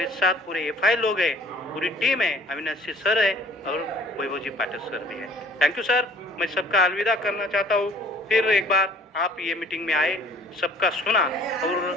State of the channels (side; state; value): both; normal; correlation 0.53